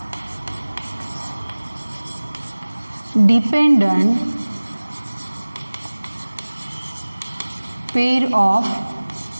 dependent pair of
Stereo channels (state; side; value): inverted; both; correlation -1.00